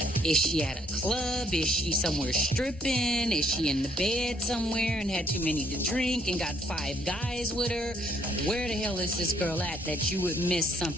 Is she at a club? Is she somewhere stripping? Is she in the bed somewhere and had too many to drink and got 5 guys with her? Where the hell is this girl at that you would miss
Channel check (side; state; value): both; normal; correlation 0.67